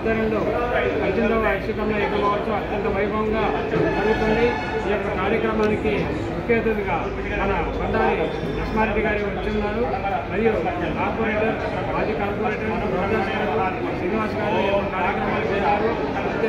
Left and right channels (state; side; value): identical; both; correlation 1.00